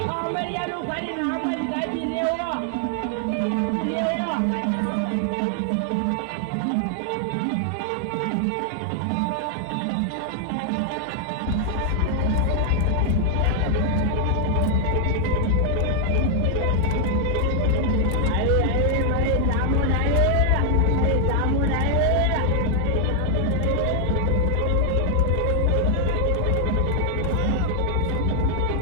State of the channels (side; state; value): both; different; correlation 0.00